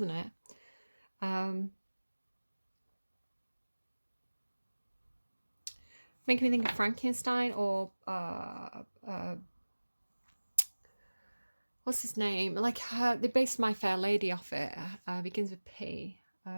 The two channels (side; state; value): both; inverted; correlation -1.00